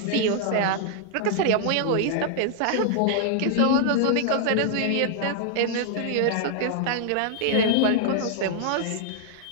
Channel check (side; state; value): both; different; correlation 0.00